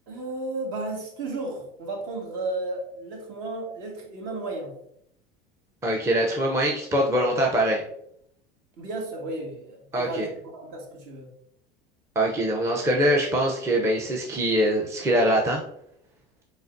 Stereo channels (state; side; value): normal; both; correlation 0.40